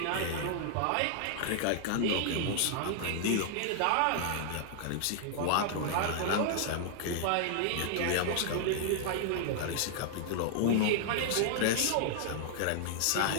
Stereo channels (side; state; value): both; different; correlation 0.00